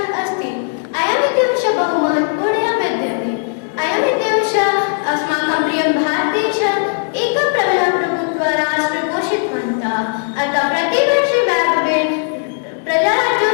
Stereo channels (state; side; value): silent; right; 66 dB below the other